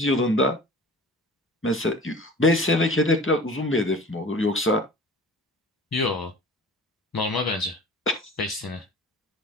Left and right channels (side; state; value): both; normal; correlation 0.41